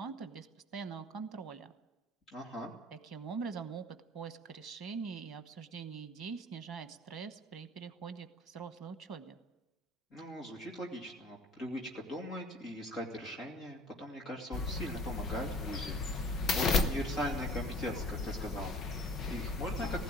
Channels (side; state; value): both; normal; correlation 0.49